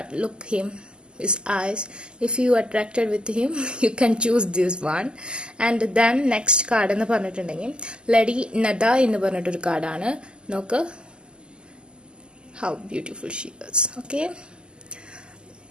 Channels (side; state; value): left; late; 0.048 ms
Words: look him, his eyes, if you attracted with him you can choose this one. And then next card എന്ന് പറഞ്ഞിട്ടുണ്ടെങ്കിൽ ലേഡി നദ എന്ന് പറഞ്ഞിട്ടൊരു കാർഡാണ്. നോക്ക്, how beautiful she is. Okay,